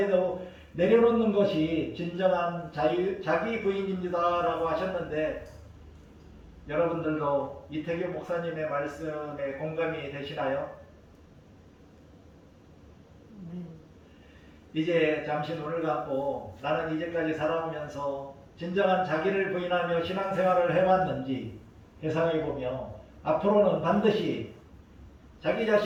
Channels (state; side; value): identical; both; correlation 1.00